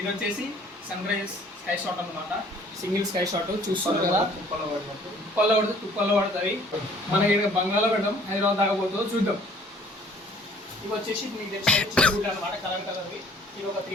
వచ్చేసి సన్ రైజ్ స్కై షాట్ అనమాట. సింగిల్ స్కై షాట్ చూస్తున్నారు కదా. తుప్పల్లో పడుతుంది. మన ఇక్కడ బంగాళలో పెడదాం, హైదరాబాద్ దాకపోతుందో చూద్దాం. ఇవి వచ్చేసి మీకు తెలిసిన అనమాట, కలర్వి. ఇది ఒక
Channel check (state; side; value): normal; both; correlation 0.56